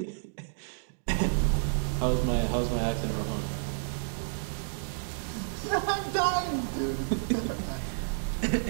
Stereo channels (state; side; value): silent; left; digital silence